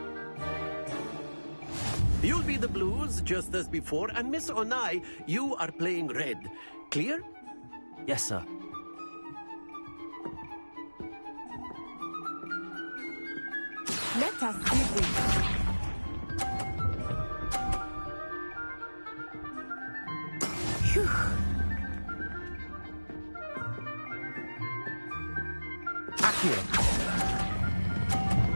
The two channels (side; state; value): both; inverted; correlation -1.00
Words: You'll be the blues, just as before, and Miss Onai, you are playing red. Clear? Yes, sir. Let us begin. Phew. Accio.